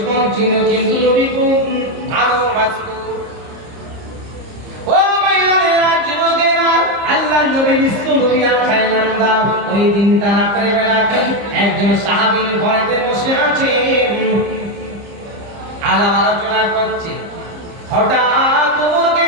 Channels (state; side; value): late; left; 30 ms